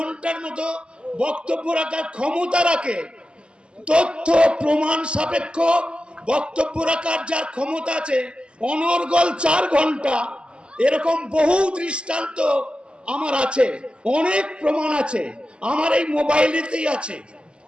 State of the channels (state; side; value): late; left; 0.052 ms